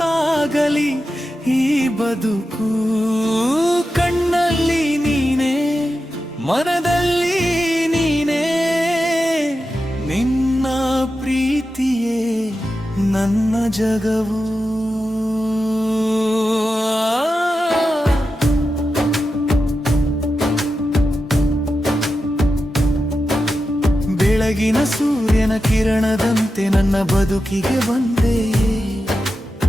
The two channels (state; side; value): normal; both; correlation 0.90